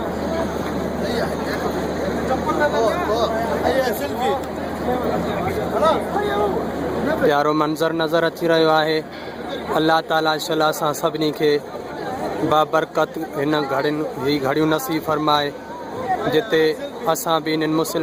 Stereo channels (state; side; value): identical; both; correlation 1.00